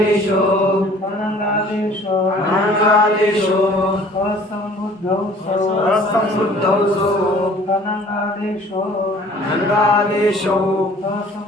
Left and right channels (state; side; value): normal; both; correlation 0.52